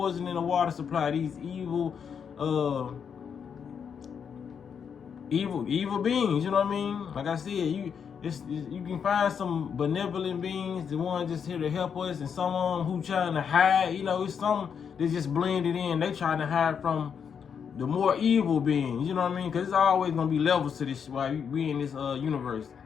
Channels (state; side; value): quieter; right; 7.1 dB